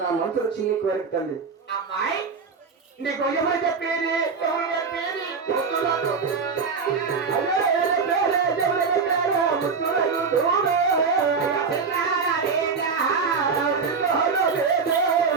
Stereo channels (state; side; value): quieter; left; 5.2 dB